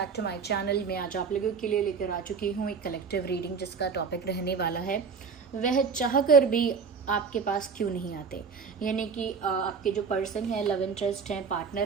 to my channel. मैं आज आप लोगों के लिए लेकर आ चुकी हूँ एक कलेक्टिव रीडिंग जिसका टॉपिक रहने वाला है वह चाहकर भी आपके पास क्यों नहीं आते। यानी कि आपके जो पर्सन है, लव इंटरेस्ट है,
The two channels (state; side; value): quieter; left; 5.7 dB